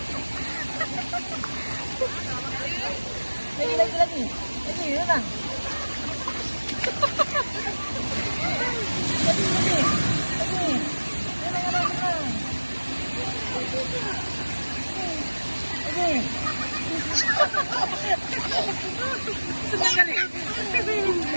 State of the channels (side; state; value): both; inverted; correlation -1.00